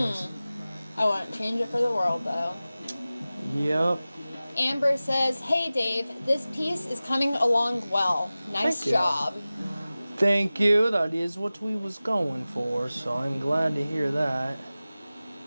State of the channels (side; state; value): both; inverted; correlation -0.97